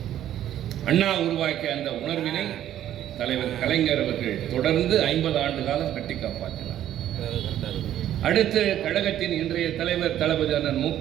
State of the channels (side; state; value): left; quieter; 11.7 dB